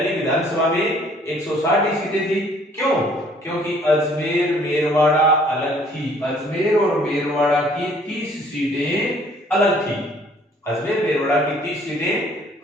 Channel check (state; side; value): normal; both; correlation 0.59